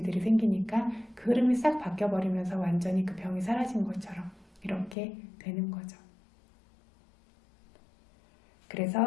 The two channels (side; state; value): right; drops out; at 5.0 s